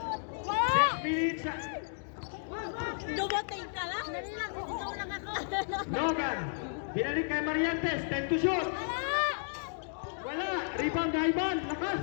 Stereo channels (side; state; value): right; silent; digital silence